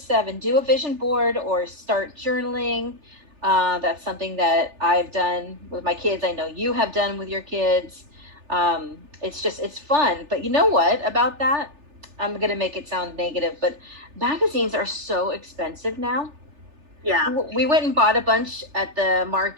do a vision board or start journaling. That's something that I've done with my kids. I know you have done with your kids. It's fun. But you know what about that? I'm going to make it sound negative, but magazines are so expensive now. Yeah. We went and bought a bunch at the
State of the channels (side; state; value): left; late; 3.4 ms